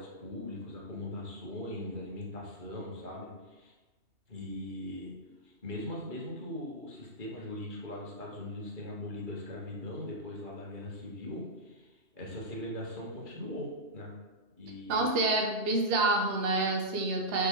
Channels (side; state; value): left; late; 2.7 ms